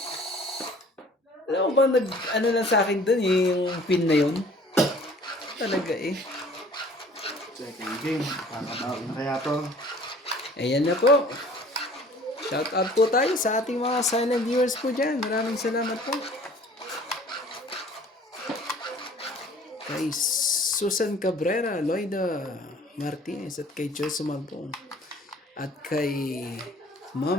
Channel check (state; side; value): normal; both; correlation 0.51